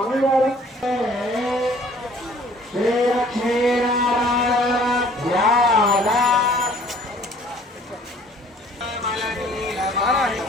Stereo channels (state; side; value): normal; both; correlation 0.55